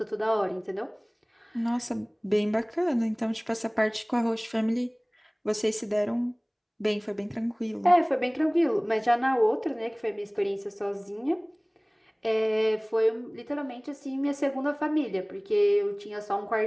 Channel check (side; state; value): both; identical; correlation 1.00